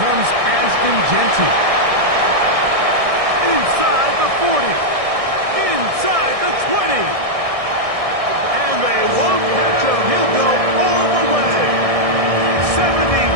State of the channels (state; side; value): late; left; 1.6 ms